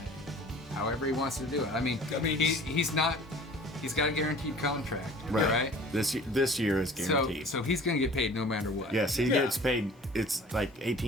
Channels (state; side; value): normal; both; correlation 0.46